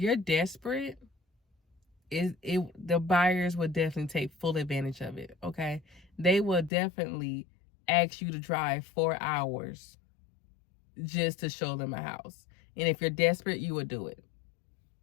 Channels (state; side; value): drops out; right; at 6.7 s